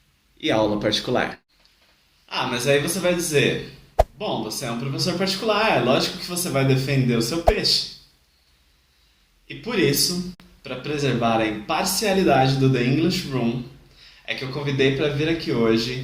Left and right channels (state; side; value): identical; both; correlation 1.00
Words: e aula particular. Ah, mas aí você vai dizer, bom, você é um professor particular, é lógico que você vai defender o seu peixe. E por isso, para preservar a imparcialidade do The English Room, é que eu convidei para vir aqui